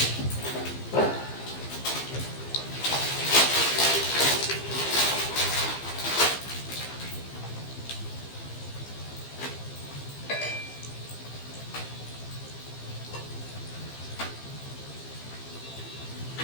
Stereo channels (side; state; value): right; late; 15 ms